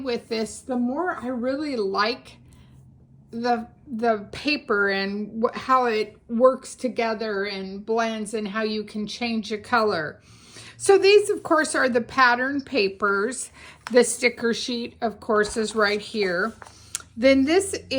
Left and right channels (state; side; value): identical; both; correlation 1.00